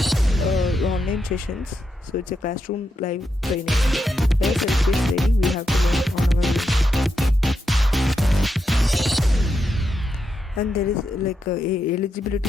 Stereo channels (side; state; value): both; normal; correlation 0.84